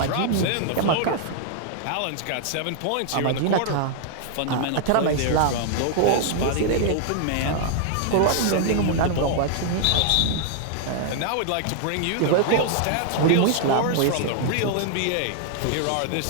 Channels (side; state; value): both; different; correlation 0.00